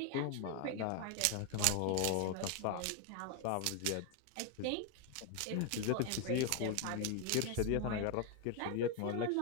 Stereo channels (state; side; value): different; both; correlation 0.01